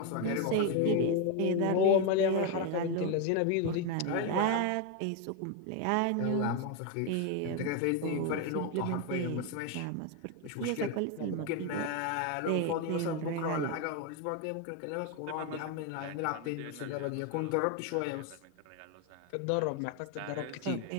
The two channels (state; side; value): different; both; correlation 0.02